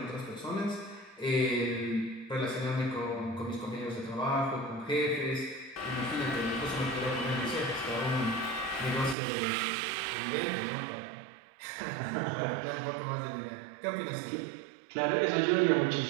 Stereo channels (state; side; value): drops out; left; at 9.2 s